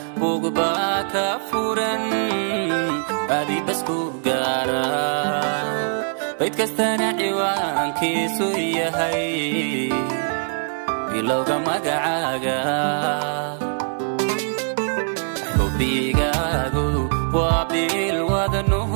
bugba ka furan adi basku gaara bayd kastana ciwaankiisu yahay bilowga magacaaga xubigaagu waa bil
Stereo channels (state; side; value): silent; left; 64 dB below the other